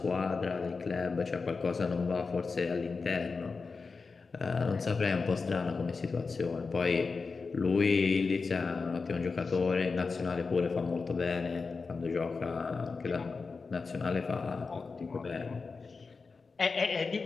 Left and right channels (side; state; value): right; quieter; 4.5 dB